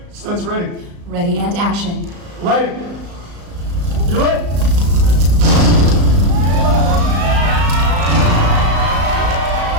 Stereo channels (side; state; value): left; late; 35 ms